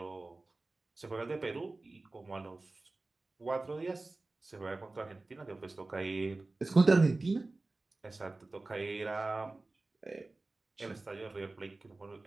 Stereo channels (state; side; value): quieter; left; 3.2 dB